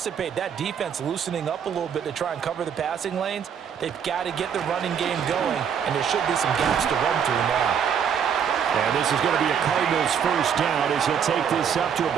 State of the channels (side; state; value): left; quieter; 7.8 dB